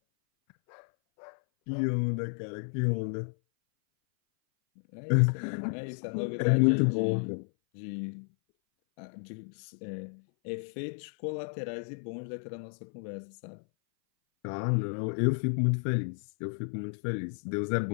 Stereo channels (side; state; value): right; silent; 57 dB below the other